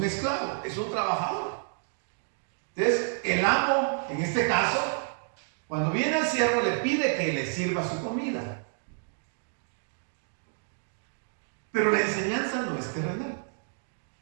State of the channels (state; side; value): silent; left; digital silence